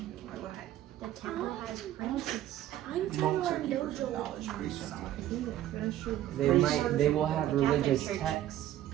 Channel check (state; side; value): quieter; left; 12.8 dB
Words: The temple has princes. I'm trying to Monks are learn keepers of dojo. knowledge, priests are not. They will have The Catholic religious Church texts,